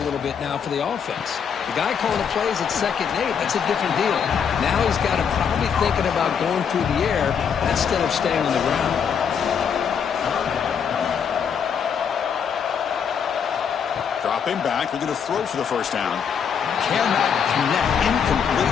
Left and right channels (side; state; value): right; quieter; 7.2 dB